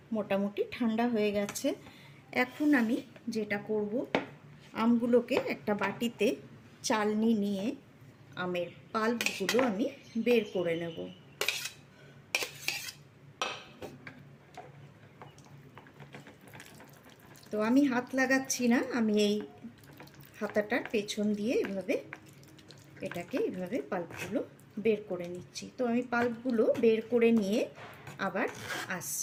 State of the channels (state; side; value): identical; both; correlation 1.00